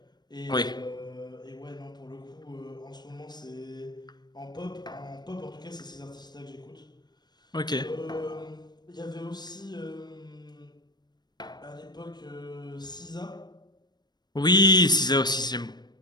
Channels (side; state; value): right; late; 0.20 ms